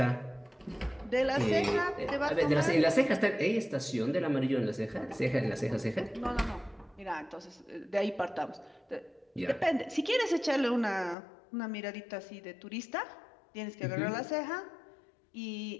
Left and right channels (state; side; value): drops out; right; at 11.2 s